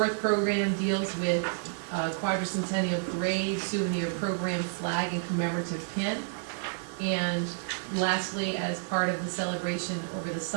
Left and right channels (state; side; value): silent; left; digital silence